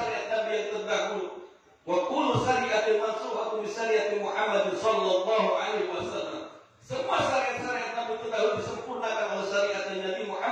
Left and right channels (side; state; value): both; identical; correlation 1.00